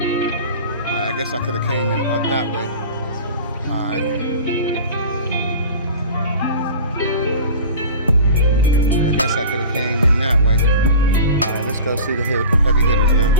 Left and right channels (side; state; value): both; inverted; correlation -0.37